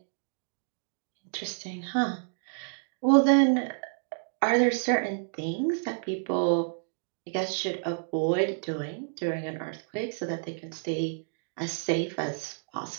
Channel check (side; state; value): left; silent; digital silence